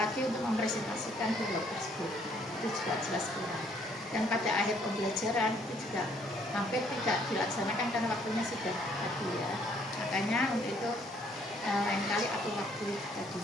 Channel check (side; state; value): both; normal; correlation 0.65